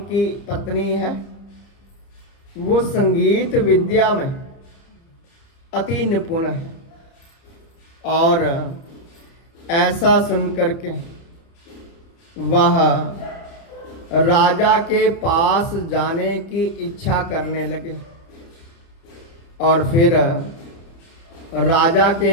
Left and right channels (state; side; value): late; right; 30 ms